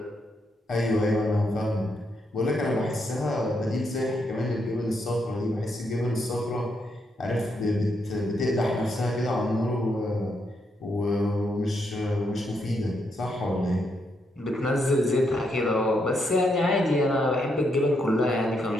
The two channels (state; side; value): normal; both; correlation 0.79